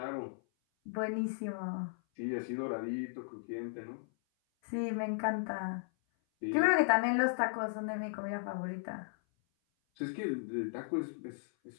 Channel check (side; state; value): right; silent; 54 dB below the other